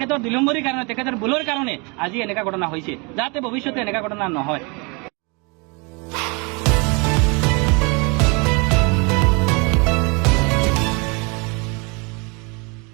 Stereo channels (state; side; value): quieter; left; 30.7 dB